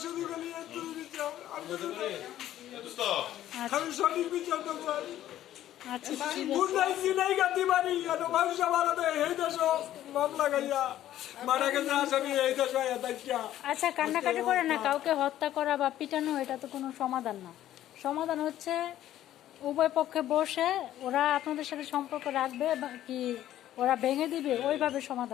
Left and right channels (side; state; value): right; quieter; 12.7 dB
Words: শুধু খালি একটুই বিচার, আর কিছু না। আমি সঠিক বিচারটা চাই। আচ্ছা ঠিক আছে। গুন্ডাই চিনাই গাতি মারি কেন মানুষ আমার এই দেশ মামলা গাইয়া মারা গেছে আসামি এই দেশ দেখা। আচ্ছা কান্নাকাটি করে না, কাউকে হত্যা করা বা পিটানো এটা তো কোনো সমাধান না। সমাধান হচ্ছে উভয় পক্ষে বসে ওরা আপনাদের সাথে সম্পর্ক রাখবে বা কি ওরা ভেঙে দিবে, ওইভাবে